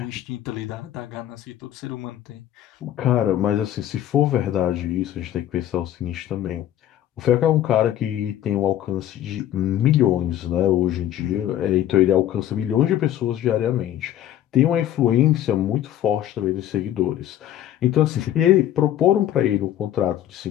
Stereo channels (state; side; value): quieter; right; 11.9 dB